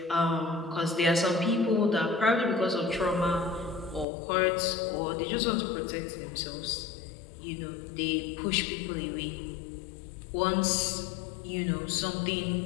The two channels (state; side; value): drops out; right; at 4.0 s